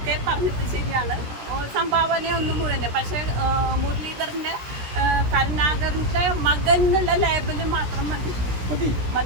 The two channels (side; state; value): left; late; 17 ms